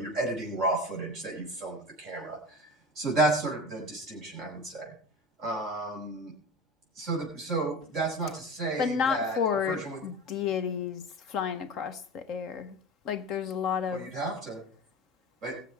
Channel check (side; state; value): both; normal; correlation 0.30